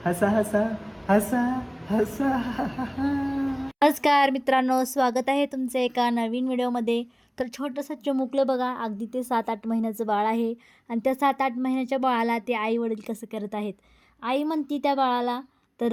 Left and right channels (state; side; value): identical; both; correlation 1.00